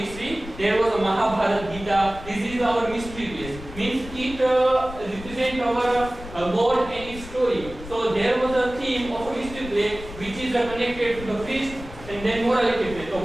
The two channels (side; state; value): left; noise; rumble, 13 dB below the sound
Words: there was a Mahabharata, Gita. This is our mystery plays. Means it represents our God and His story. So there was a theme of a mystery play which is connected to the priest, and then morality play. So